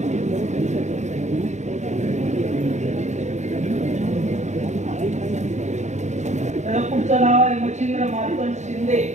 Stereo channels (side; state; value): left; late; 0.34 ms